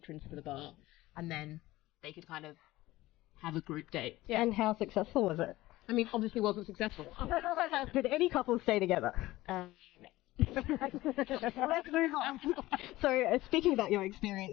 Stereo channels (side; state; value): right; quieter; 17.6 dB